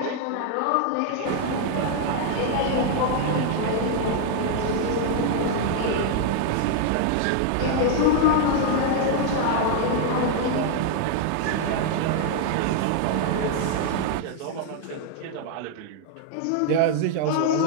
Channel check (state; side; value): different; both; correlation 0.00